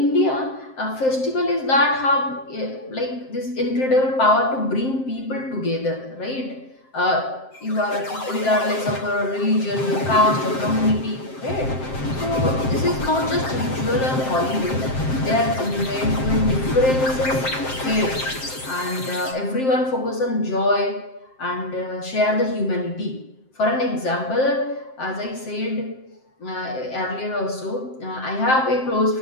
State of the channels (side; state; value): right; late; 7.6 ms